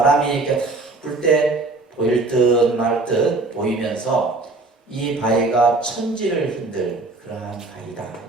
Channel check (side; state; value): left; quieter; 3.3 dB